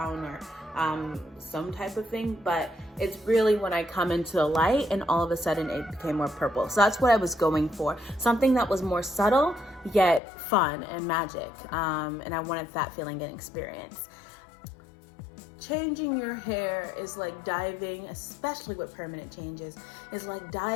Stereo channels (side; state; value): right; drops out; at 10.2 s